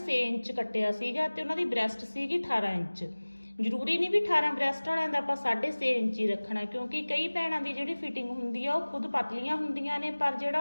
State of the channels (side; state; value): both; inverted; correlation -1.00